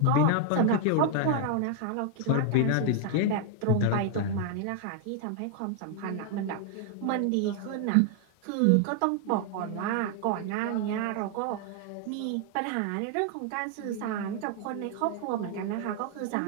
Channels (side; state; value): both; different; correlation 0.00